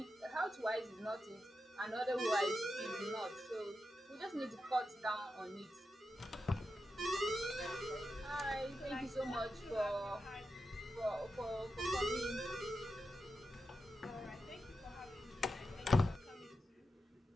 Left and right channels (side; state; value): both; normal; correlation 0.89